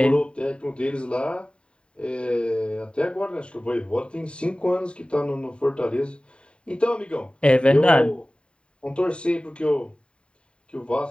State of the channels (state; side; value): late; right; 0.054 ms